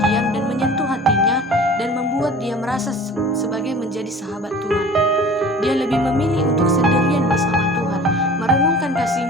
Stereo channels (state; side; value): normal; both; correlation 0.43